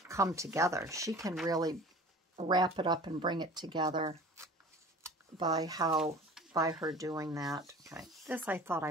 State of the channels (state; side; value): normal; both; correlation 0.42